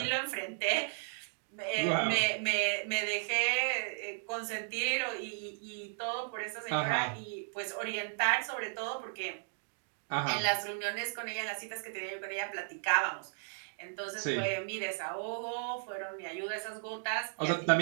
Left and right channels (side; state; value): left; silent; digital silence